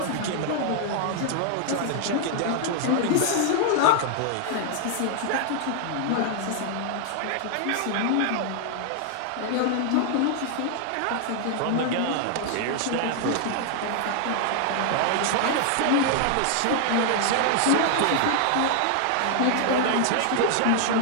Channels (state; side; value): different; both; correlation 0.00